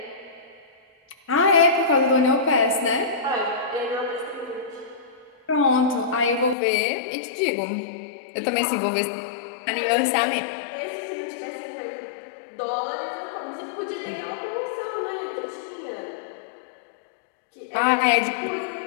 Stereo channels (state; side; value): drops out; right; at 6.6 s